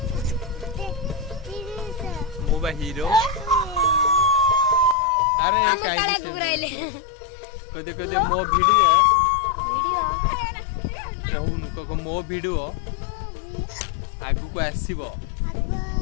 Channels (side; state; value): right; drops out; at 5.0 s